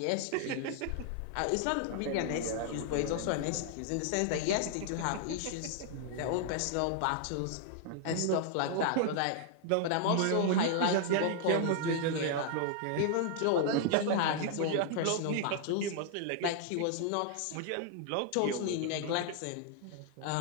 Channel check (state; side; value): different; both; correlation 0.00